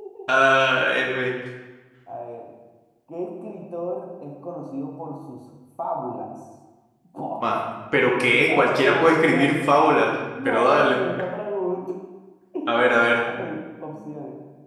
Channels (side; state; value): both; identical; correlation 1.00